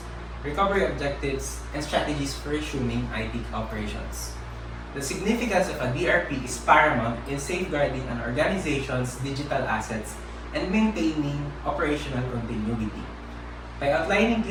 recovery objectives, and strategies for resuming IT operations. The significance of a DRP is paramount in safeguarding an organization's digital assets and maintaining operational continuity. By outlining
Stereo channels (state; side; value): identical; both; correlation 1.00